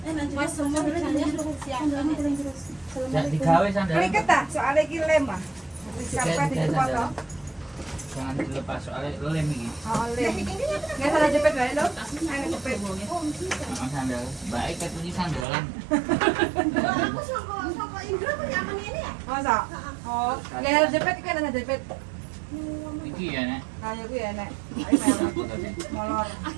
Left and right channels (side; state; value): left; drops out; at 15.5 s